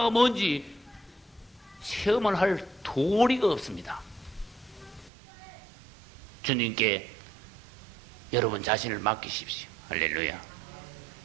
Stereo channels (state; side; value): drops out; left; at 5.1 s